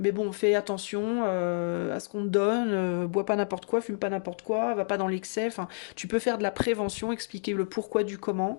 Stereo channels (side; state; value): right; silent; digital silence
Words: bon, fais attention à ce qu'on te donne, bois pas n'importe quoi, fume pas n'importe quoi, va pas dans l'excès, enfin, tu peux faire de la prévention, expliquer le pourquoi du